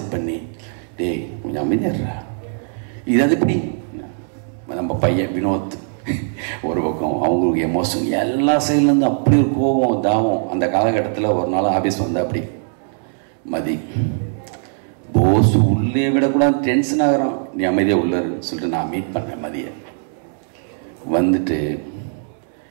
பண்ணி, டேய் கொஞ்சம் அமைதியாடுறா, இது அது இப்படி. நம்ம பையன் வினோத் ஒரு பக்கம், அவங்களுக்கு எமோஷன் எல்லா சைட்லேருந்து அப்படி ஒரு கோபம் தாவம். அந்த காலகட்டத்தில் ஒரு நாள் ஆஃபீஸ் வந்து அப்படி மதி போஸ் உள்ளே விடக்கூடாது, டென்ஷன் ஆகிறான், நீ அமைதியாக உள்ளன்னு சொல்லிட்டு நான் மீட் பண்ணேன். மதியை வந்துட்டு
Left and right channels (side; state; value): left; silent; digital silence